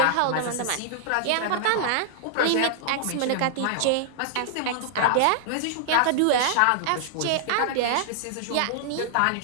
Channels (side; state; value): both; different; correlation -0.01